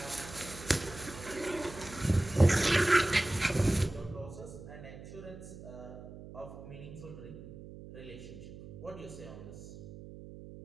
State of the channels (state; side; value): noise; right; hum, 14 dB below the sound